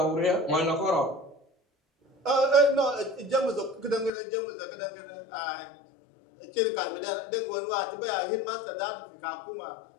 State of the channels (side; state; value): right; drops out; at 4.1 s